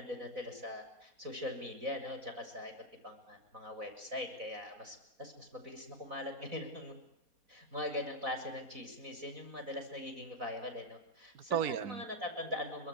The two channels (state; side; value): late; left; 4.2 ms